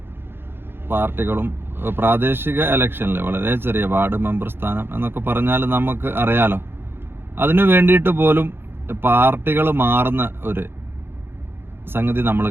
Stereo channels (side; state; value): left; late; 0.11 ms